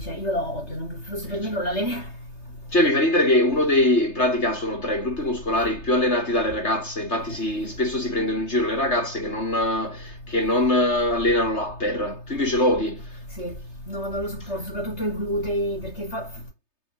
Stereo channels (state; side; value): late; right; 3.3 ms